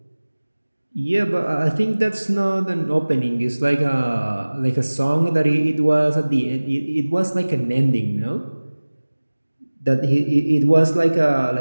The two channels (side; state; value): both; inverted; correlation -1.00